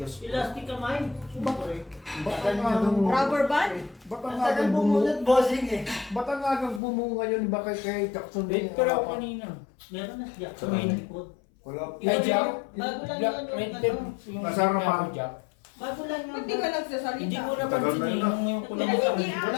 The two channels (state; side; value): drops out; right; at 6.8 s